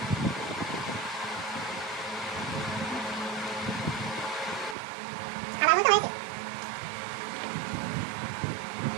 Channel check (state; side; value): drops out; left; at 4.8 s